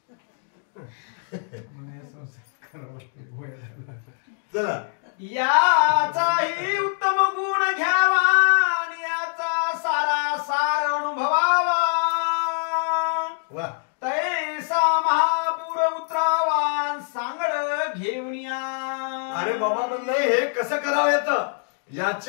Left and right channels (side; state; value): right; silent; 59 dB below the other